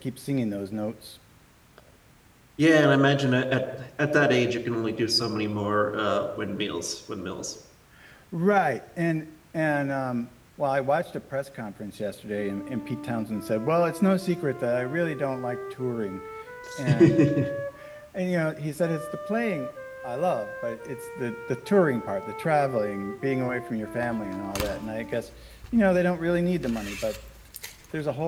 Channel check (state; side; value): identical; both; correlation 1.00